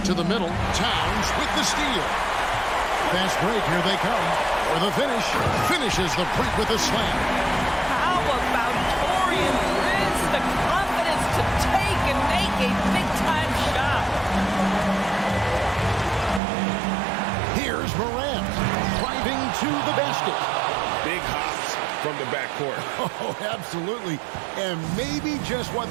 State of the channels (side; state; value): left; drops out; at 16.4 s